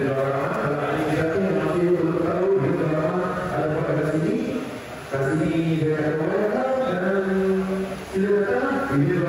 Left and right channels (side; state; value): both; identical; correlation 1.00